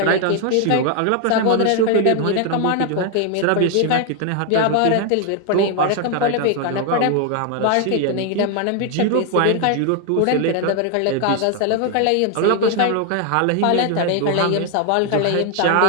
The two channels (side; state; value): both; different; correlation 0.01